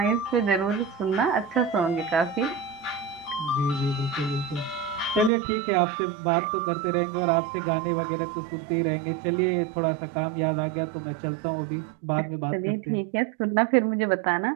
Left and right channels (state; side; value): drops out; left; at 5.3 s